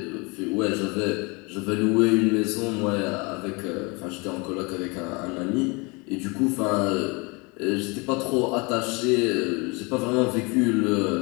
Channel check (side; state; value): right; quieter; 28.3 dB